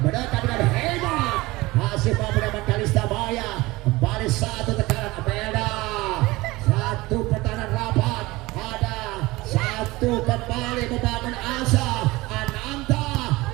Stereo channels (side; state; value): left; quieter; 20.7 dB